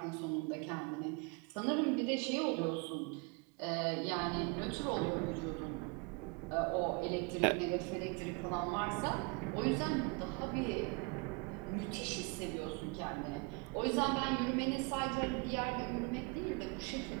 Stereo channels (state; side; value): quieter; left; 29.8 dB